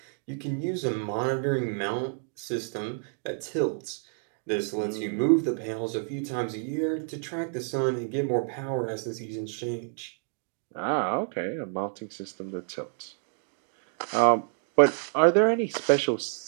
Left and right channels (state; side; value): silent; left; 59 dB below the other